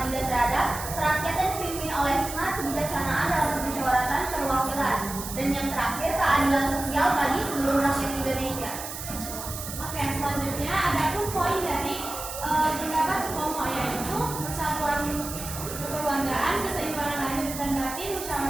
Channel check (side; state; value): right; noise; hiss, 9 dB below the sound